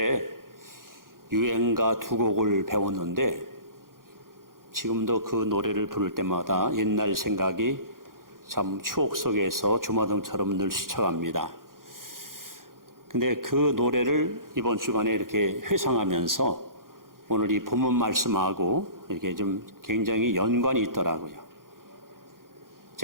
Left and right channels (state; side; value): late; left; 0.91 ms